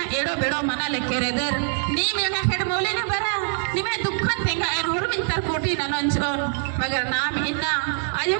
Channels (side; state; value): left; silent; 59 dB below the other